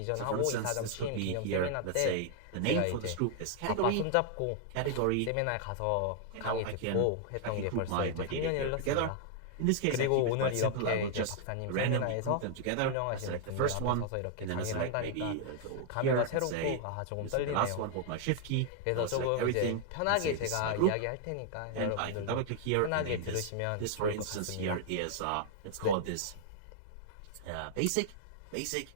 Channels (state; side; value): different; both; correlation 0.00